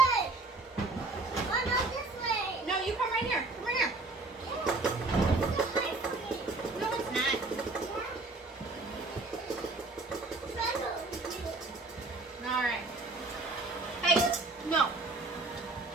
Oh, no, this way. No, you come right here. Come right here. This way for me. No, it's not. All right. Hey, no.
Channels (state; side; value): quieter; left; 3.3 dB